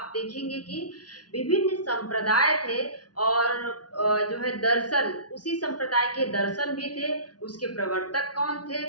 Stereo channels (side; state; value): right; late; 0.69 ms